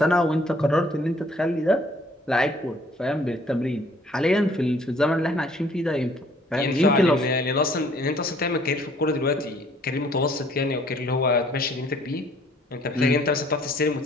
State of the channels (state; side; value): normal; both; correlation 0.60